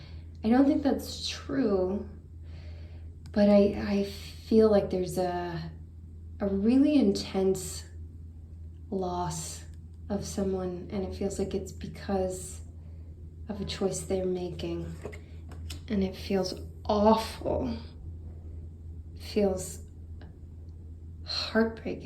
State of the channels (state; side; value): identical; both; correlation 1.00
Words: I don't think that's true, but I feel like there's a really intense loss of someone, and it feels like it's because of a choice they're making, and it feels awful. It feels